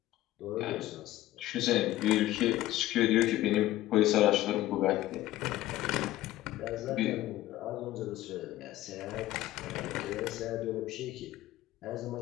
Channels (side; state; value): right; quieter; 15.5 dB